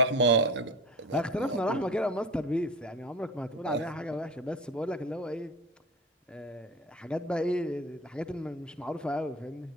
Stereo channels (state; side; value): normal; both; correlation 0.32